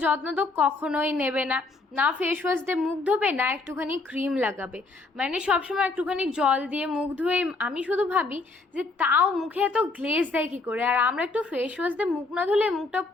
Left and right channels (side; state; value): right; quieter; 3.5 dB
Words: যত্ন তো কখনোই নেবে না, না ফেস ওয়াশ দিয়ে মুখ ধোবে, না একটুখানি ক্রিম লাগাবে, মানে সবসময় একটুখানি জল দিয়ে মুখ ধুয়ে। আমি শুধু ভাবি যে তাও মুখে এত গ্লেজ দেয় কী করে, আর আমরা একটু ফেস ওয়াশ দিয়ে মুখ না ধুলে মুখটা